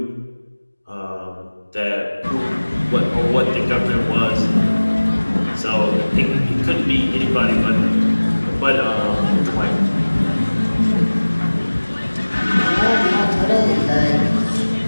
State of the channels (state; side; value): inverted; both; correlation -1.00